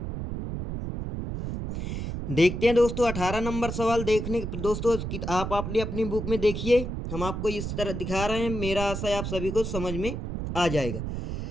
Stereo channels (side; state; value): right; noise; rumble, 5 dB below the sound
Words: देखते हैं दोस्तों 18 नंबर सवाल। देखने दोस्तों आप अपनी बुक में देखिए, हम आपको इस तरह दिखा रहे हैं। मेरा आशा है आप सभी को समझ में आ जाएगा।